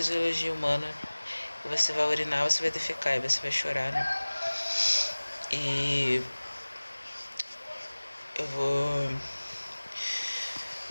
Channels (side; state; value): both; inverted; correlation -1.00